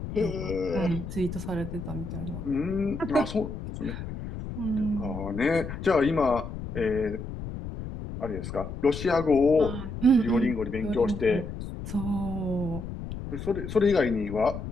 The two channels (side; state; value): left; noise; rumble, 8 dB below the sound